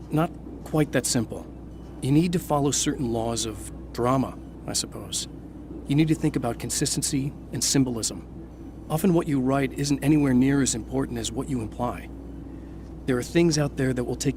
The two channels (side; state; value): both; identical; correlation 1.00